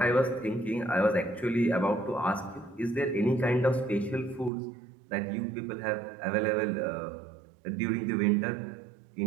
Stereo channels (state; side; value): drops out; left; at 4.5 s